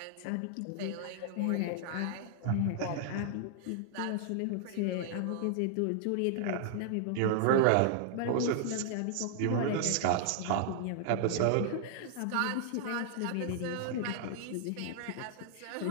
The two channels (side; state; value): both; different; correlation -0.01